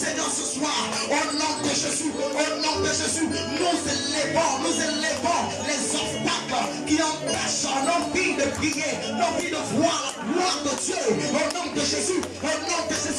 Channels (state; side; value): identical; both; correlation 1.00